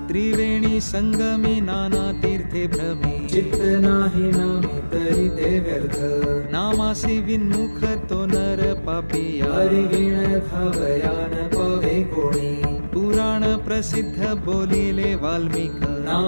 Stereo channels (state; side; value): inverted; both; correlation -1.00